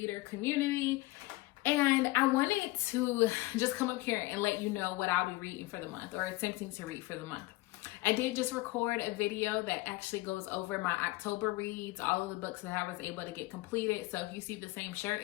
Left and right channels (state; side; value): quieter; right; 20.6 dB